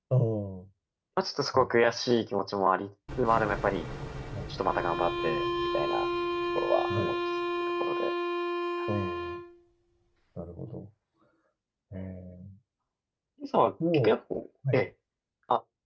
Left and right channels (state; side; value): identical; both; correlation 1.00